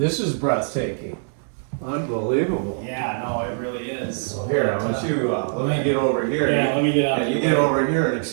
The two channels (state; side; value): silent; left; digital silence